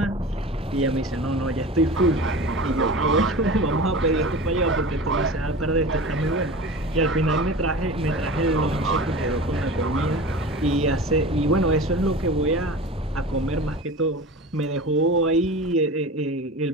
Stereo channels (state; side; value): normal; both; correlation 0.34